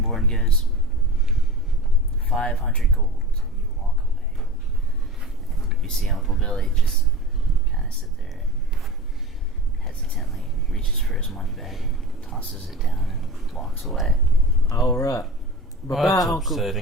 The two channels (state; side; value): normal; both; correlation 0.32